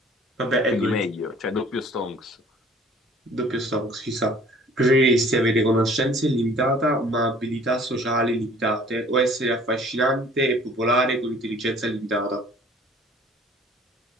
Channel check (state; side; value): normal; both; correlation 0.52